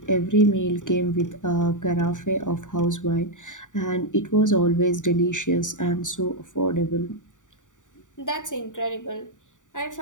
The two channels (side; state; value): right; late; 0.86 ms